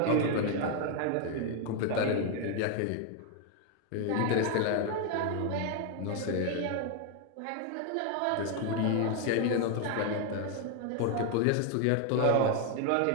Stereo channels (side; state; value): both; different; correlation 0.01